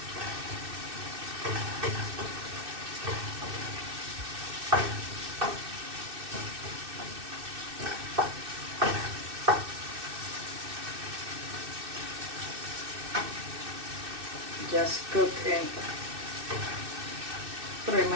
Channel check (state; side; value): late; left; 2.6 ms